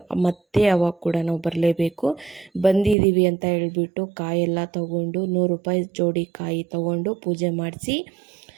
ಮತ್ತೆ ಅವಾಗ ಕೂಡ ನಾವು ಬರಲೇಬೇಕು. ಬಂದಿದ್ದೀವಿ ಅಂತ ಹೇಳ್ಬಿಟ್ಟು ಕಾಯೆಲ್ಲ ತೊಗೊಂಡು 100 ರೂಪಾಯಿ ಜೋಡಿ ಕಾಯಿ ತೊಗೊಂಡು ಪೂಜೆ ಮಾಡಿಸಿ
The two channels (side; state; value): left; drops out; at 3.0 s